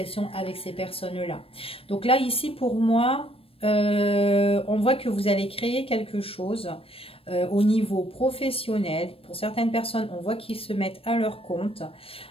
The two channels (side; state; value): right; late; 0.27 ms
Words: avec ces personnes-là. Donc là, ici, pour moi, on voit que vous allez créer quelque chose au niveau professionnel. Pour certaines personnes, on voit qu'ils se mettent à leur compte.